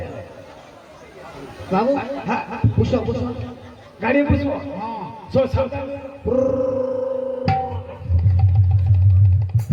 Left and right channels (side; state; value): both; identical; correlation 1.00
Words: বাবু হ্যাঁ বসো বসো গাড়ি বসবো হ্যাঁ শোন সাবধান